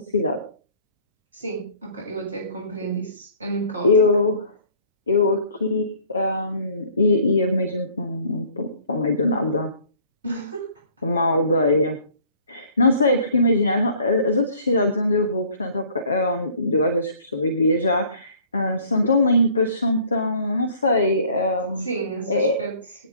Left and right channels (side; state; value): both; inverted; correlation -0.55